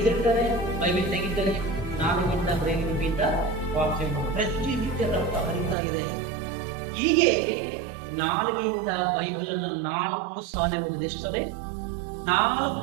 ಬೈಬಲ್ ತೆಗಿತಾರೆ, ನಾಲಿಗೆಯಿಂದ ಬ್ರೈಲಿ ಲಿಪಿಯಿಂದ ವಾಕ್ಯ ಪ್ರತಿನಿತ್ಯ ರಕ್ತ ಹರಿತಾ ಇದೆ. ಹೀಗೆ ನಾಲಿಗೆಯಿಂದ ಬೈಬಲ್ ಅನ್ನು 4 ಸಾರಿ ಓದಿದ. ಎಷ್ಟೇ?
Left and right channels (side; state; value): left; drops out; at 5.8 s